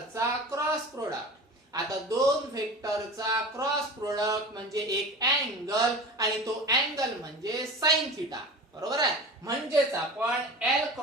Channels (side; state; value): both; normal; correlation 0.34